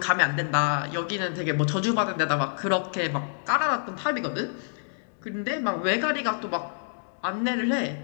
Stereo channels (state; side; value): silent; right; digital silence